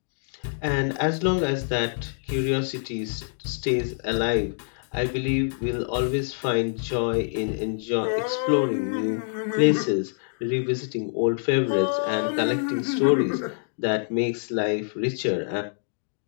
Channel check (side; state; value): right; silent; digital silence